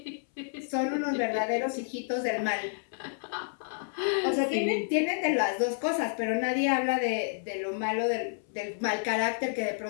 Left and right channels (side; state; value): right; silent; 58 dB below the other